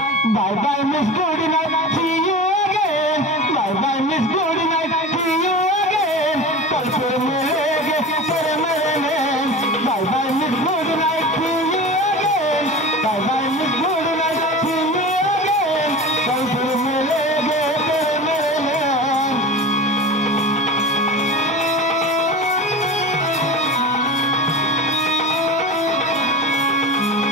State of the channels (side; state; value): both; normal; correlation 0.32